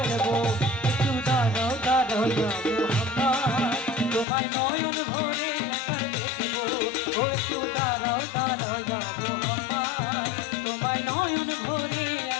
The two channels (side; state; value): right; drops out; at 4.2 s